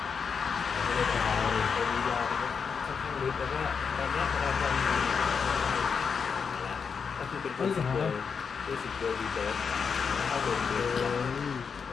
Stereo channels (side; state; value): right; quieter; 6.0 dB